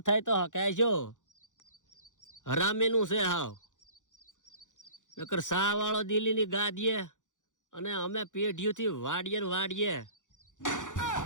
થાય તો હકાય જો હરામીનું છે હાવ. નકર સા વાળો દિલ્હીની ગાદીએ અને અમે પેઢીઓથી વાડીએ ને વાડીએ.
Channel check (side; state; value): right; late; 0.87 ms